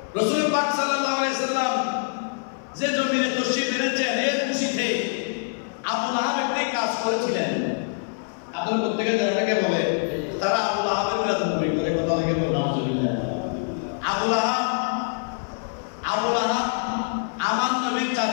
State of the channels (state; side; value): silent; right; 62 dB below the other